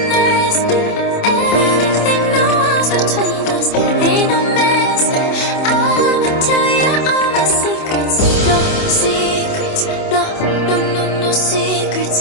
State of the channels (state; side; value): late; right; 27 ms